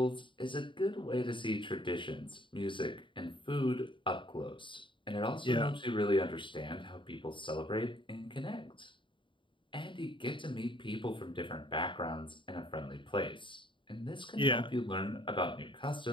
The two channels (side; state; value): right; late; 0.24 ms